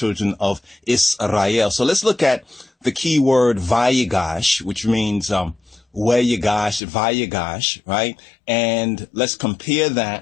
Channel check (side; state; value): right; drops out; at 6.8 s